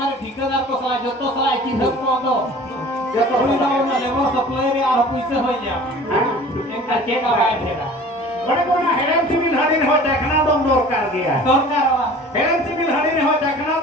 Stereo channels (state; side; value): normal; both; correlation 0.44